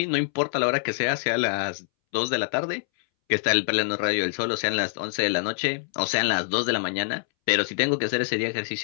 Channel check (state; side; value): silent; right; 62 dB below the other